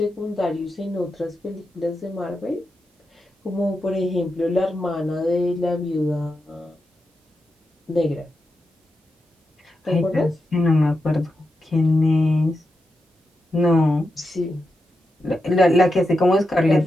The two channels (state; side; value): normal; both; correlation 0.88